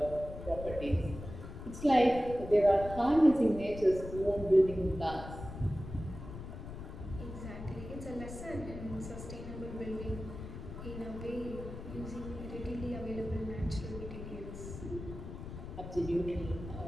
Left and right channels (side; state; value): left; noise; rumble, 10 dB below the sound